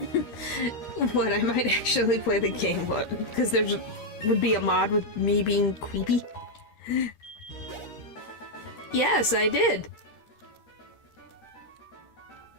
What, I might actually play the game, what? Because would be a mod with me being creepy? Yes, I did.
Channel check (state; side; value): late; right; 13 ms